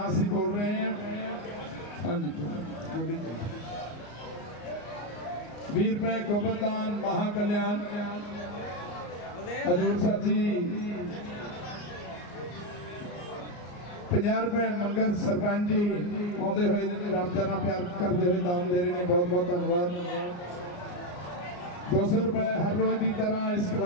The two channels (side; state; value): right; late; 34 ms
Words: असीं बोल रहे हैं। हाँ जी 20 रुपए गोबरदान महाकल्याण हजूर साहब जी। 50 रुपए मंगल सरपंच जी आते हुए रामचरण प्यार करते हुए दान दे रहे हैं, बहुत बहुत धन्यवाद। 200 रुपए हर रोज की तरह इस